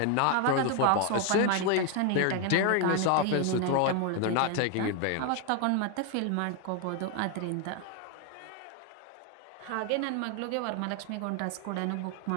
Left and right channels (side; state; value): both; different; correlation 0.01